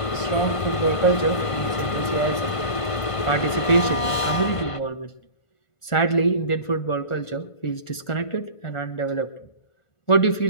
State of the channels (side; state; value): right; late; 1.5 ms